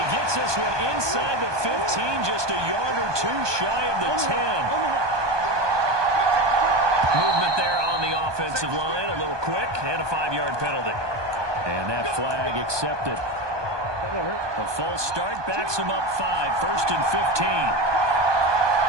gets this one inside the 15, just a yard or 2 shy of the 10. Movement there on the offensive line, a little quick, and a 5-yard penalty. And that flag accepted. A false start backs him up 5, 1st and 15.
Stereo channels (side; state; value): left; late; 1.2 ms